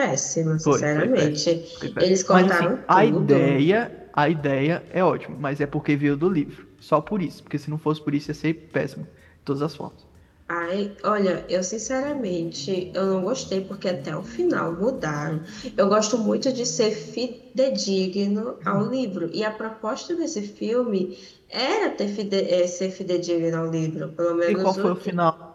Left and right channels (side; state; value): both; identical; correlation 1.00